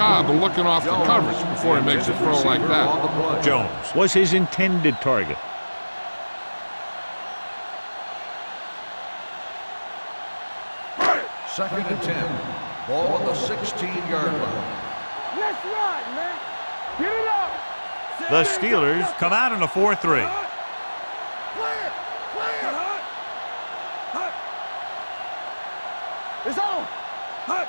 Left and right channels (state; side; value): inverted; both; correlation -1.00